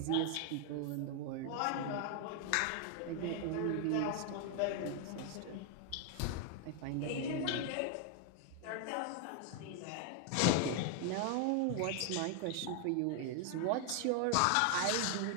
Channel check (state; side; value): different; both; correlation 0.00